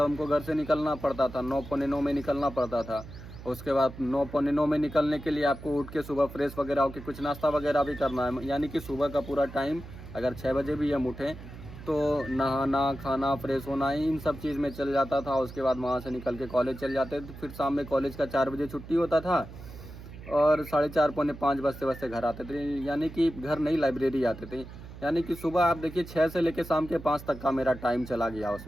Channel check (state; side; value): noise; right; hum, 14 dB below the sound